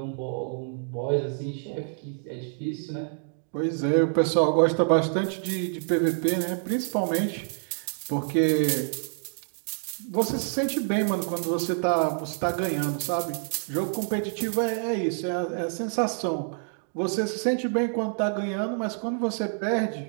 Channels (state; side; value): silent; left; 60 dB below the other